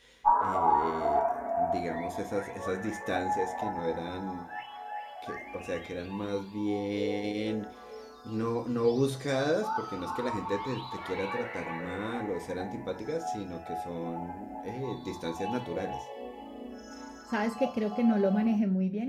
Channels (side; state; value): both; identical; correlation 1.00